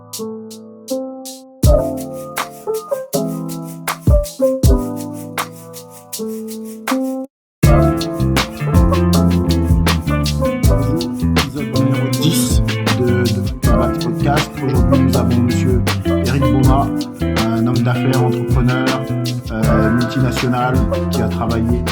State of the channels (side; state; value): both; identical; correlation 1.00